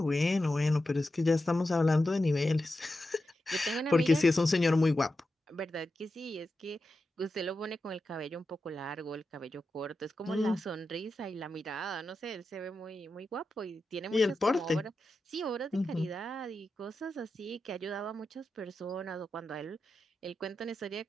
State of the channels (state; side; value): normal; both; correlation 0.90